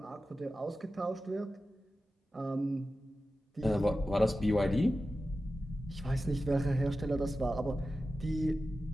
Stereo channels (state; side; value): normal; both; correlation 0.93